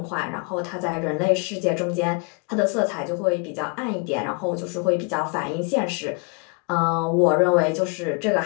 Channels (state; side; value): quieter; right; 33.1 dB